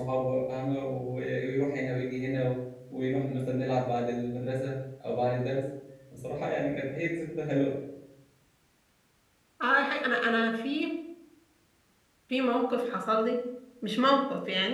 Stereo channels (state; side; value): identical; both; correlation 1.00